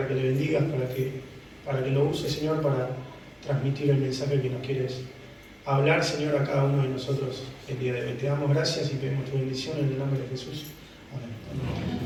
que le bendigas, para que lo uses, Señor, para transmitir el mensaje que nos quieres hablar, Señor, a cada uno de nosotros el día de hoy. Te damos gracias y pedimos tu bendición en el nombre de Jesús. Amén.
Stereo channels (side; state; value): both; identical; correlation 1.00